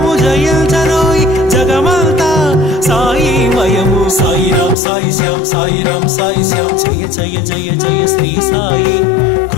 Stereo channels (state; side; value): drops out; right; at 4.8 s